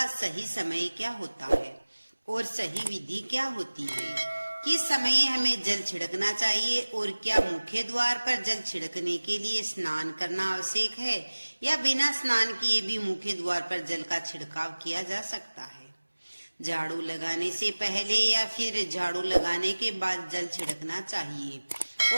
सही समय क्या होता है और सही विधि क्या होती है। किस समय हमें जल छिड़कना चाहिए और क्या मुख्य द्वार पर जल छिड़कने के लिए स्नान करना आवश्यक है या बिना स्नान किए भी मुख्य द्वार पर जल का छिड़काव किया जा सकता है। झाड़ू लगाने से पहले या फिर झाड़ू लगाने के बाद जल छिड़कना चाहिए।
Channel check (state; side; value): inverted; both; correlation -1.00